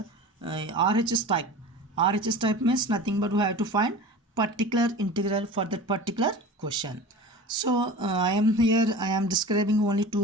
RHS type. RHS type means nothing but we have to find particular integral for that particular question. So I am describing only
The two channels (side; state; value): both; normal; correlation 0.36